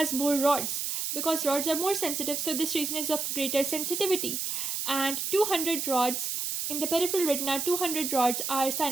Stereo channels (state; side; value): noise; right; hiss, 2 dB below the sound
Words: more rods because rods are more sensitive, so this region is of greater sensitivity. And 200 rods in the peripheral retina, 200 rods are